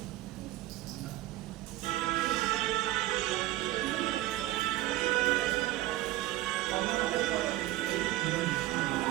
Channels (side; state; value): left; quieter; 16.4 dB